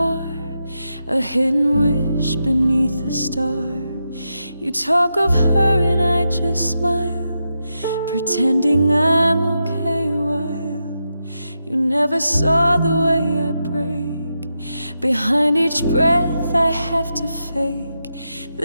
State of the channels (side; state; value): both; inverted; correlation -0.86